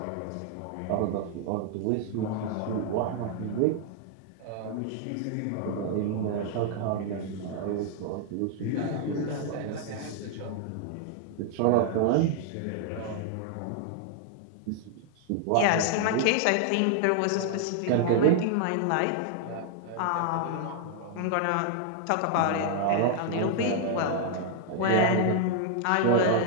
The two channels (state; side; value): different; both; correlation 0.00